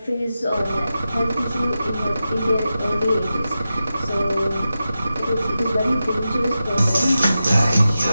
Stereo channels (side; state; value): both; inverted; correlation -0.92